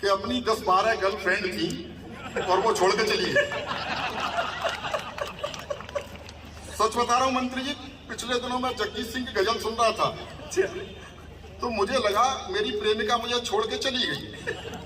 अपनी 10-12 गर्लफ्रेंड थी और वो छोड़ के चली गई। सच बता रहा हूँ मंत्री जी, पिछले दिनों मैं जगजीत सिंह की गजल सुन रहा था तो मुझे लगा मेरी प्रेमिका मुझे छोड़ के चली गई,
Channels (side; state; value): both; identical; correlation 1.00